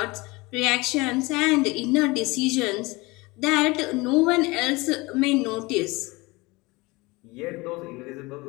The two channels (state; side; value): quieter; right; 23.5 dB